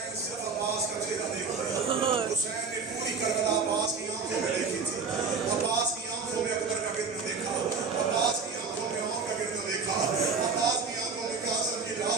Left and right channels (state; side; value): quieter; left; 5.0 dB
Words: صرف عباس کا چہرہ دیکھتے. حسین نے پوری کربلا عباس کی آنکھوں میں دیکھی تھی. عباس کی آنکھوں میں اکبر کا گرنا دیکھا, عباس کی آنکھوں میں عمر کا گرنا دیکھا, عباس کی آنکھوں میں قاسم کی